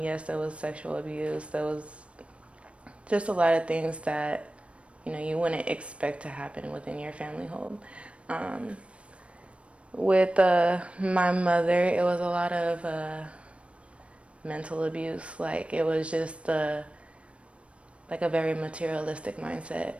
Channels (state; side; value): late; left; 0.061 ms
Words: there was sexual abuse. There was just a lot of things that you wouldn't expect to happen within your family home. With my mother, it was a lot of mental abuse. Like, it was just like a very materialistic mindset.